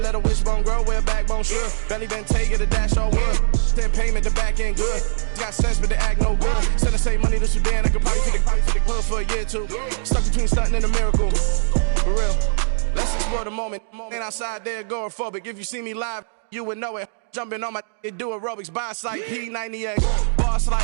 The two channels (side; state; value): left; silent; 65 dB below the other